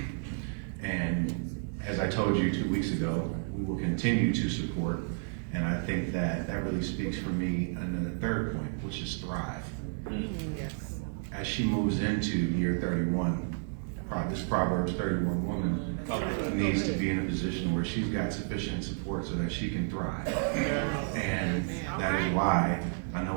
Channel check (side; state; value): left; silent; digital silence